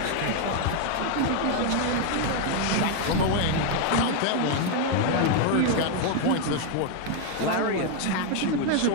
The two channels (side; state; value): both; different; correlation 0.01